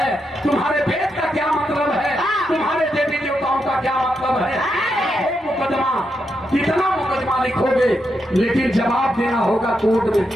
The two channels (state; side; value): normal; both; correlation 0.83